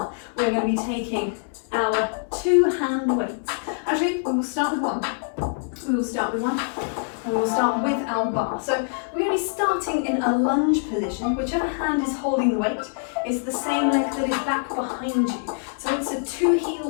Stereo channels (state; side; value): silent; right; digital silence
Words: We're going to be taking our 2-hand weights. Actually, we will start with one. We will start with one. And we'll start with our bar. So we're going to be starting in a lunge position. Whichever hand is holding the weight is the same leg that is back behind you. So it's a 2